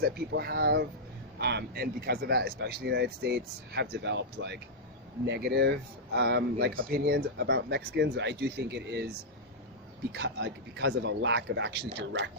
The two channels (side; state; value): both; normal; correlation -0.08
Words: that people have. And because of that, especially in the United States, have developed like negative Yes. opinions about Mexicans. I do think it is because of a lack of actually